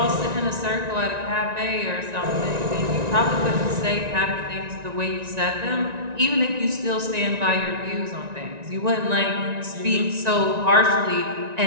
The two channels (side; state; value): left; late; 1.9 ms